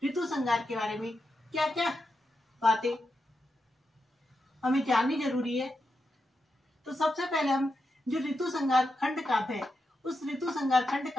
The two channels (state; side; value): normal; both; correlation 0.87